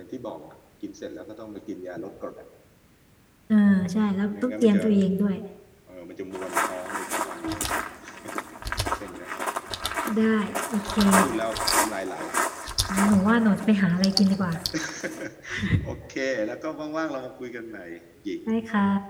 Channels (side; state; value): both; identical; correlation 1.00